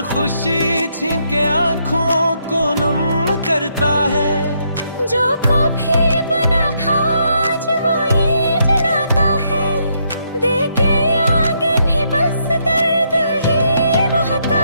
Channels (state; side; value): inverted; both; correlation -0.76